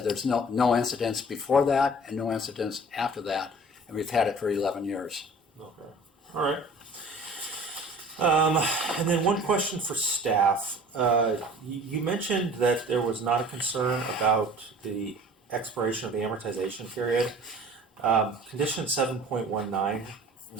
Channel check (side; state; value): both; normal; correlation 0.46